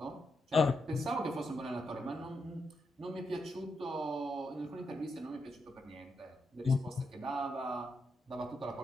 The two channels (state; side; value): normal; both; correlation 0.83